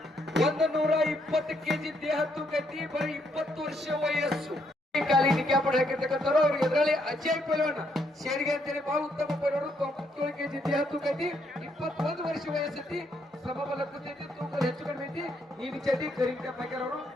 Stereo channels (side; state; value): both; normal; correlation 0.74